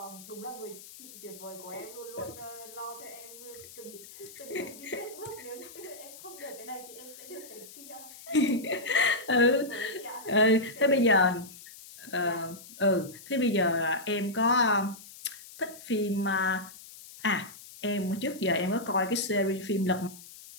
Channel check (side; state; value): left; noise; hiss, 17 dB below the sound